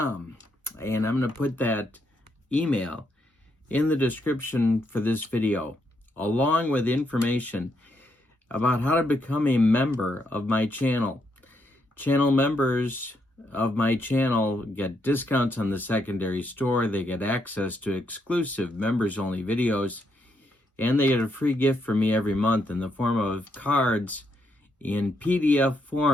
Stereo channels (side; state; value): both; normal; correlation 0.78